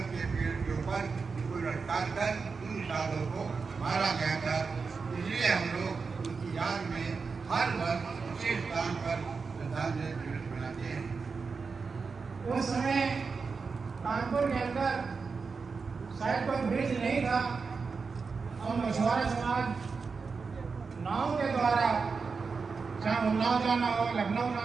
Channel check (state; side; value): quieter; left; 4.9 dB